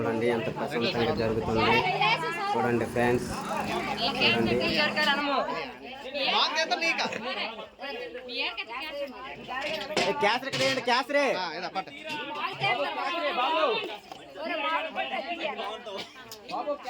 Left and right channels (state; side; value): identical; both; correlation 1.00